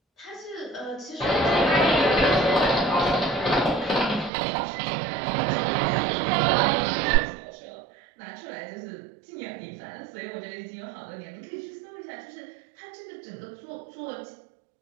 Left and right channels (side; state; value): left; drops out; at 4.3 s